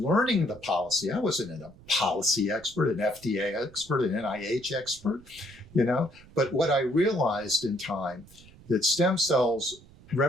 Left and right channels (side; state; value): right; noise; rumble, 23 dB below the sound